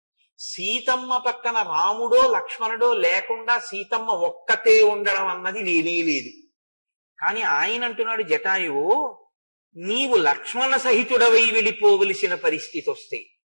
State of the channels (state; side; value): inverted; both; correlation -1.00